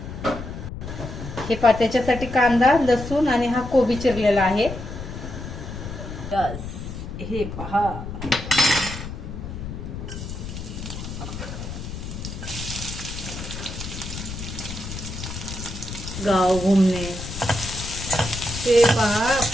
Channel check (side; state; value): left; noise; rumble, 8 dB below the sound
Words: हे त्याच्यासाठी कांदा, लसूण आणि हा कोबी चिरलेला आहे. हे पहा, गाव घुमणे. ते पहा,